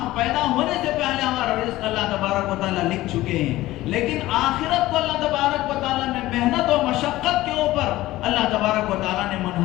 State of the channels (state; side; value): quieter; right; 16.8 dB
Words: پیدا ہونے سے پہلے ہمارا رزق اللہ تبارک و تعالیٰ لکھ چکے ہیں، لیکن آخرت کو اللہ تبارک و تعالیٰ نے محنت و مشقت کے اوپر اللہ تبارک و تعالیٰ نے